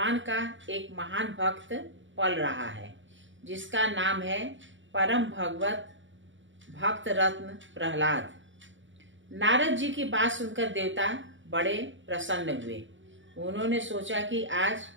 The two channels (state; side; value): late; left; 0.55 ms